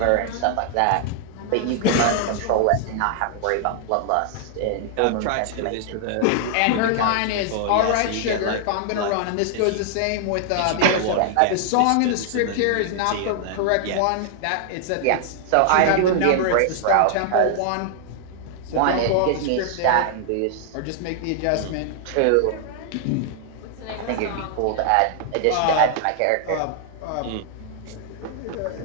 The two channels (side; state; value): both; different; correlation 0.00